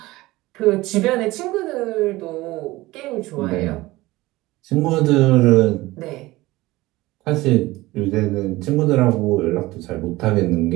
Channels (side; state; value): left; quieter; 19.1 dB